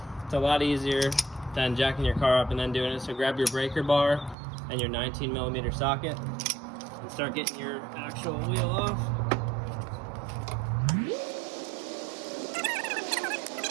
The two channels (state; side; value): drops out; left; at 4.4 s